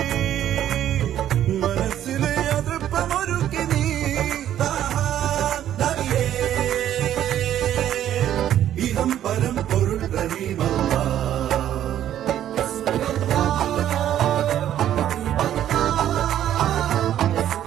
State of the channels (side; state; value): left; quieter; 11.3 dB